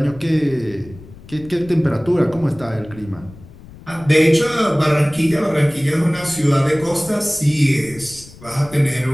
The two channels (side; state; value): left; noise; rumble, 19 dB below the sound